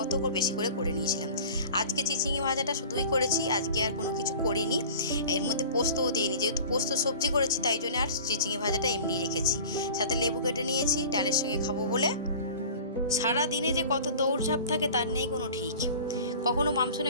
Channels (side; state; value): both; inverted; correlation -0.41